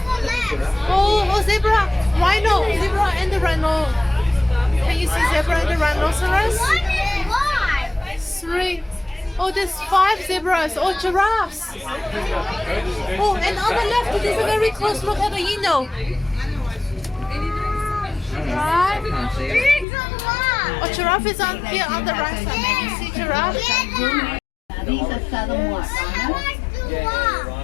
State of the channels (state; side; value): drops out; right; at 19.9 s